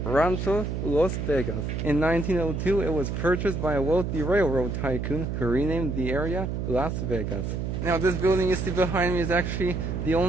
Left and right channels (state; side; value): noise; right; hum, 3 dB below the sound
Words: Rancho Las Vegas. In 1902, it was purchased by a wealthy railroad tycoon who renamed the area Las Vegas. Now, this building you see behind me is actually the